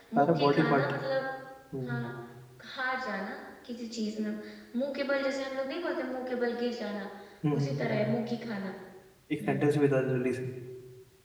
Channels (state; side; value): identical; both; correlation 1.00